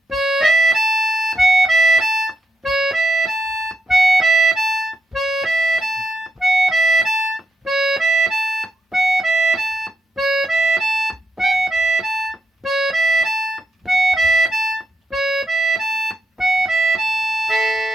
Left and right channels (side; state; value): both; normal; correlation 0.82